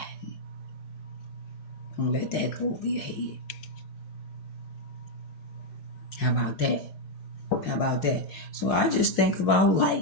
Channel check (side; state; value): right; late; 5.6 ms